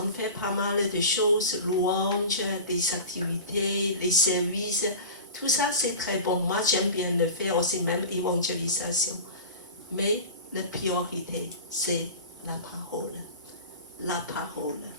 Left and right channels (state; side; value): inverted; both; correlation -0.33